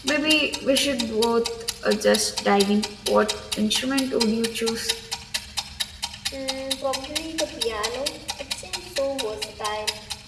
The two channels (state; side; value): identical; both; correlation 1.00